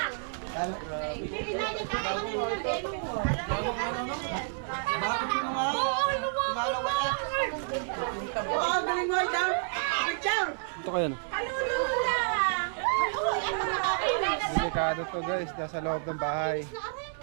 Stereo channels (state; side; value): silent; left; digital silence